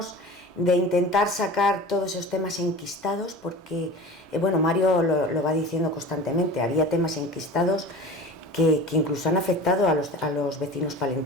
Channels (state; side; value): normal; both; correlation 0.36